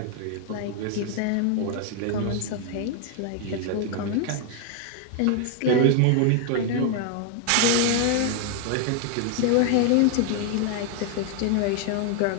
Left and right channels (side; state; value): both; different; correlation 0.00